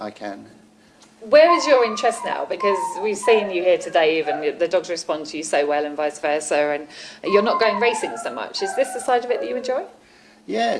I can. Where is your interest now? Because we've seen you here today, even the dogs respond to you so well, and vice versa, and you're not going racing so much. Is this the side of it that you enjoy?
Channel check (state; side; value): identical; both; correlation 1.00